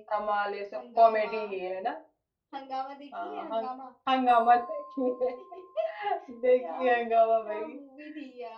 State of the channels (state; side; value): identical; both; correlation 1.00